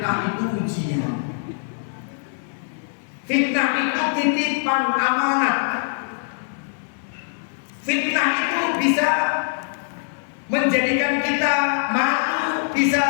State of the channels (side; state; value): right; silent; 64 dB below the other